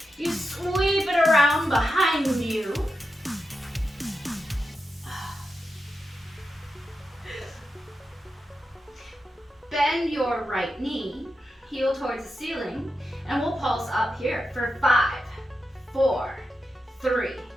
You sweep it around behind you. Bend your right knee, heel towards the ceiling, and we'll pulse up here for 5, 4, 3,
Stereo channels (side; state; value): both; normal; correlation 0.88